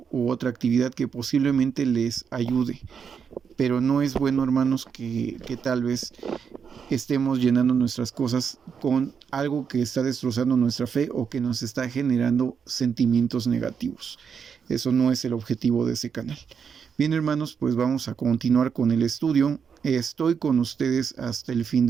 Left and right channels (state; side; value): quieter; left; 6.7 dB